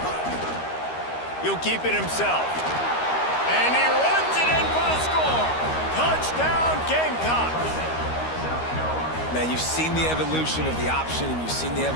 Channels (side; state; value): right; late; 13 ms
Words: He'll keep it himself. And he runs it in for the score. Touchdown, Gamecocks. Man, you've seen the evolution of the option, and you've seen the